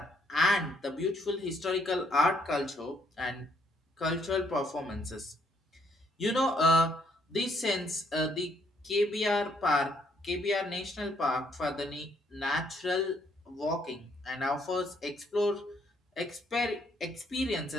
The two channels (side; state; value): both; normal; correlation 0.69